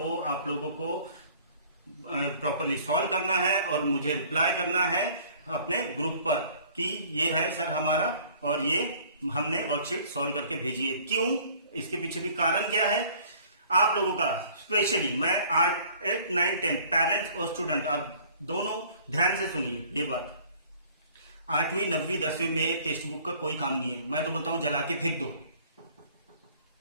आप लोगों को प्रॉपरली सॉल्व करना है और मुझे रिप्लाई करना है अपने ग्रुप पर कि ये है सर हमारा और ये हमने वर्कशीट सॉल्व करके भेजी है। क्यों, इसके पीछे भी कारण क्या है आप लोगों का, स्पेशली मैं 8th, 9th, 10th पेरेंट्स और स्टूडेंट, आप दोनों ध्यान से सुनिए ये बात। 8वीं 9वीं 10वीं में टेक्स्ट बुक का कोई काम नहीं है। मैं तो बोलता हूं जला के फेंक दो,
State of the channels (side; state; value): both; inverted; correlation -0.53